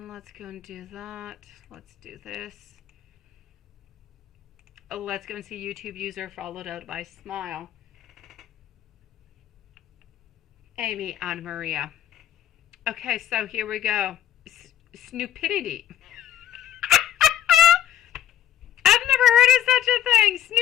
Let's go and do that. Let's do this. Let's go and see YouTube user followed out by Smile. Amy and Maria. Okay, so here we go. Snoopidity. Heard of such a thing,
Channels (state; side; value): quieter; right; 11.2 dB